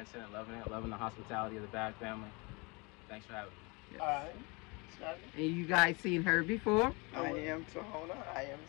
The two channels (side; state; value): right; quieter; 28.1 dB